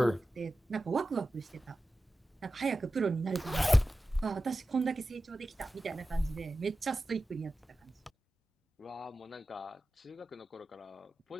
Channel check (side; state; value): both; normal; correlation 0.94